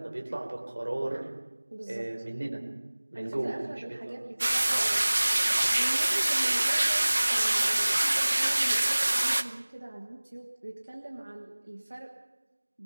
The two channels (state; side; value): inverted; both; correlation -1.00